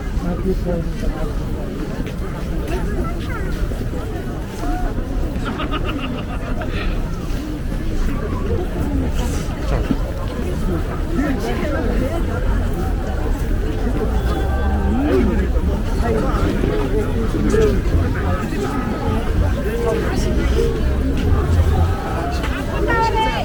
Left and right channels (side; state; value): both; identical; correlation 1.00